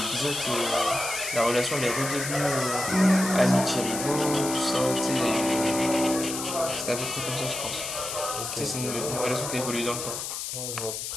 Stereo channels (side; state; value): left; noise; hiss, 5 dB below the sound